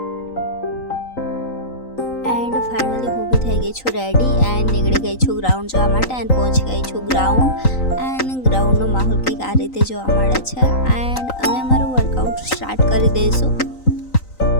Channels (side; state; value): right; late; 3.9 ms